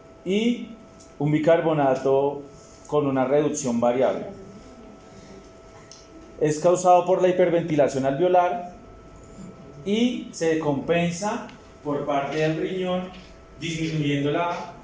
y un bicarbonato con una reducción variable. Es causado por la hiperventilación alveolar y se compensa por parte del riñón disminuyendo la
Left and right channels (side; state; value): both; identical; correlation 1.00